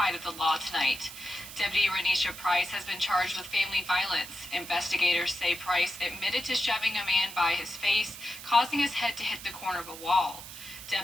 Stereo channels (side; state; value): right; noise; hiss, 13 dB below the sound